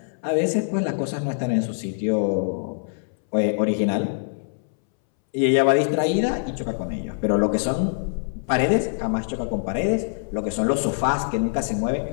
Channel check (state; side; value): silent; right; 63 dB below the other